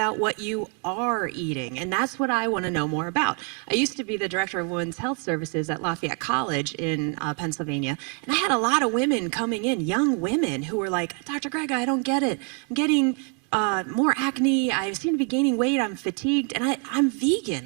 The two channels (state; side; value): quieter; left; 39.5 dB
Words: what you are eating. And that's what I want to know more about. I used to be the director of women's health services at Lafayette College in Pennsylvania. And I had a lot of women coming in, young women who were like, Dr. Grega, I don't get it. I'm getting more acne. I seem to be gaining weight. I'm fatigued. And I'm vegan.